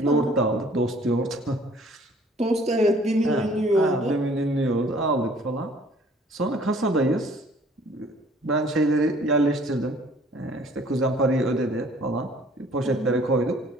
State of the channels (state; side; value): normal; both; correlation 0.55